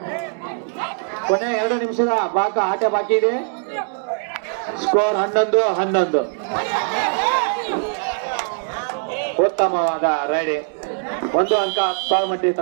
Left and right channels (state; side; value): silent; left; digital silence